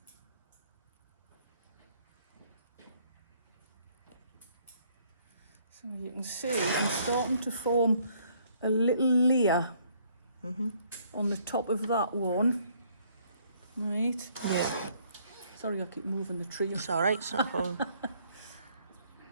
so you can see I'm starting to form a little layer on the top of that one. Right. Yeah. Sorry, I keep moving the tree. It's all right. It's not a problem.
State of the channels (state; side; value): inverted; both; correlation -0.65